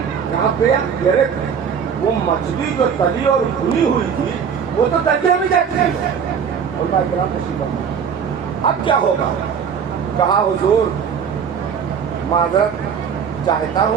कहाँ पे? अरे वो मछली जो तली और भुनी हुई थी वो तो दरिया में जाती है। अब क्या होगा? कहा हुजूर माजरत चाहता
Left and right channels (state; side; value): quieter; left; 7.1 dB